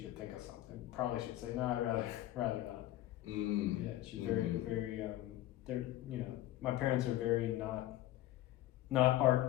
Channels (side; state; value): right; quieter; 14.8 dB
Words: could think of something. Probably she'd say, no, I'd rather not. Yeah, she's very, very. They're, you know, my parents are very not